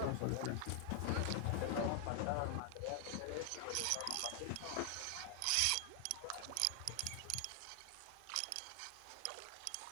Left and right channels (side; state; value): both; different; correlation 0.00